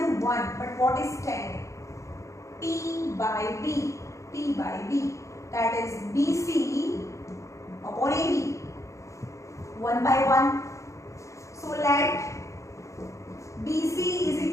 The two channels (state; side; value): late; right; 0.15 ms